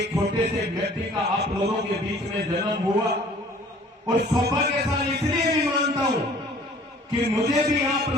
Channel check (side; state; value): both; normal; correlation 0.52